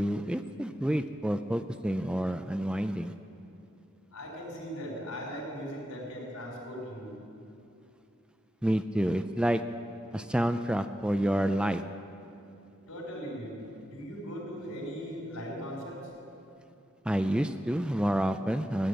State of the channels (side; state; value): both; normal; correlation 0.90